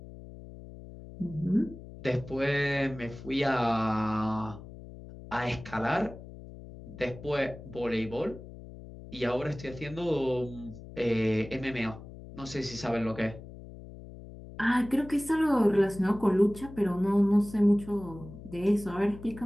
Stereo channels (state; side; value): noise; left; hum, 15 dB below the sound